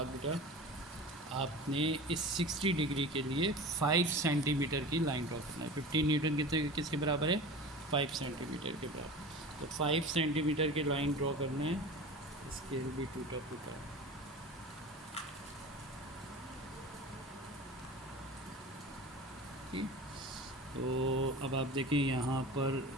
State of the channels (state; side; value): normal; both; correlation 0.35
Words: बेटा आपने इस 60 डिग्री के लिए 5 सेंटीमीटर की लाइन ड्रॉ करना है। 15 न्यूटन किसके बराबर है, 5 सेंटीमीटर के बराबर। तो 5 सेंटीमीटर की लाइन ड्रॉ करना है, स्केल भी टूटा फूटा है। ठीक, तो अब आप देखें यहाँ पर